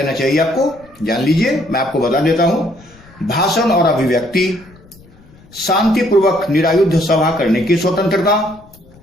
चाहिए आपको। जान लीजिए, मैं आपको बता देता हूं। भाषण और अभिव्यक्ति, शांतिपूर्वक निरायुध सभा करने की स्वतंत्रता,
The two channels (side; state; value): left; noise; rumble, 26 dB below the sound